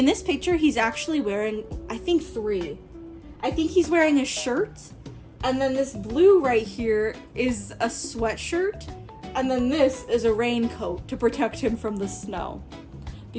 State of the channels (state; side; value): identical; both; correlation 1.00